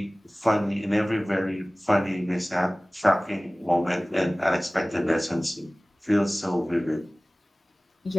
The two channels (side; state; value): both; normal; correlation 0.98